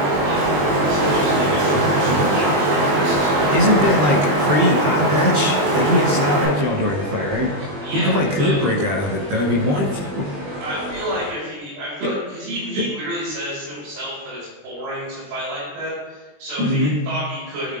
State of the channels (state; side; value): late; left; 20 ms